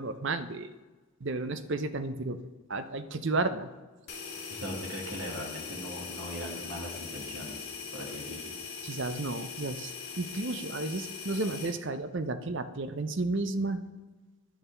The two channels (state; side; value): normal; both; correlation 0.24